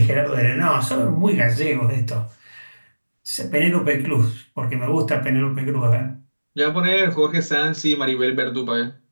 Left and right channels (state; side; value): inverted; both; correlation -1.00